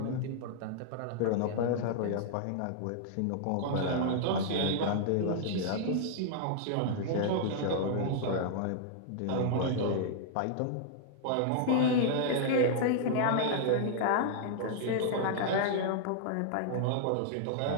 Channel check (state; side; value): different; both; correlation -0.01